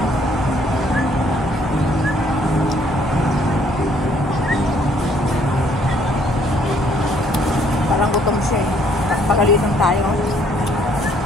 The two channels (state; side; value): normal; both; correlation 0.64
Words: Parang gutom siya eh. Pagalitan tayo.